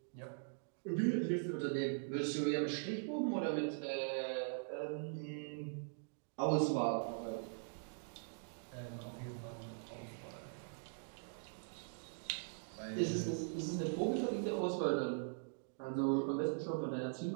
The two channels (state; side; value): silent; left; digital silence